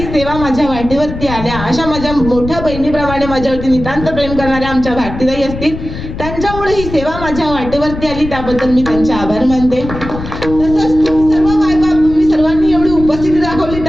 सेवा माझ्या वाटेवरती आल्या अशा माझ्या मोठ्या बहिणीप्रमाणे माझ्यावरती नितांत प्रेम करणाऱ्या आमच्या भारतीताई असतील त्यांच्यामुळे ही सेवा माझ्या वाटेवरती आली त्याबद्दल मी त्यांचे आभार मानते. तसंच तुम्ही सर्व मायबाप तुम्ही सर्वांनी एवढी उपस्थिती दाखवली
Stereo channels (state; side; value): noise; left; rumble, 9 dB below the sound